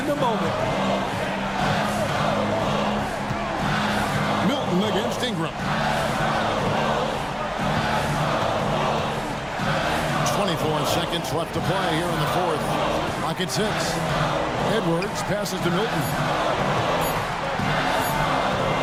the moment. Milton against Ingram. 24 seconds left to play here in the fourth. Clock at 6. Edwards passes to Milton.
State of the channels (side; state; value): both; identical; correlation 1.00